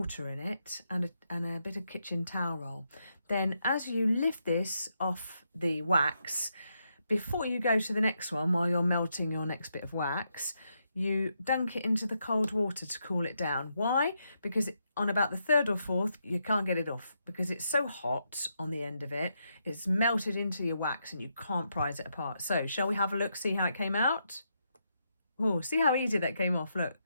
in it and a bit of kitchen towel roll. Then as you lift this off the wax, before you go to the next one, while you're melting your next bit of wax, you dunk it into the cold water to cool it down. Why? Because on about the 3rd or 4th, you can't get it off because it's so hot on the end of it. It's melted into your wax and you can't prise it apart. So shall we have a look, see how it came out? Oh, see how easy that came off, look.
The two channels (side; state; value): both; inverted; correlation -0.81